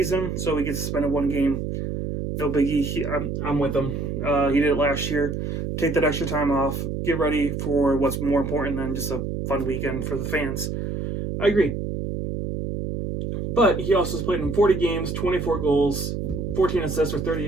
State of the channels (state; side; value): noise; right; hum, 3 dB below the sound